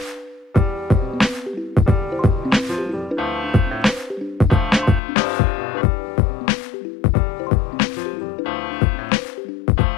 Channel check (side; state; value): right; drops out; at 5.0 s